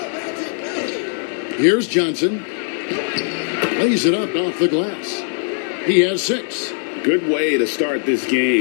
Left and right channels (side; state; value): right; silent; digital silence